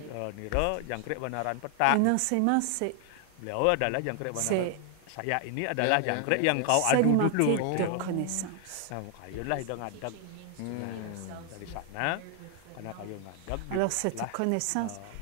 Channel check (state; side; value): different; both; correlation 0.00